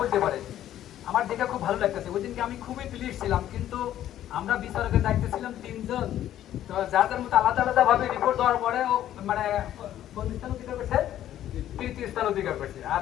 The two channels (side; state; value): right; quieter; 12.0 dB